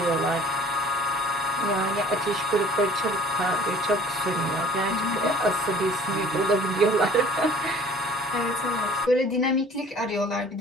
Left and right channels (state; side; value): normal; both; correlation 0.50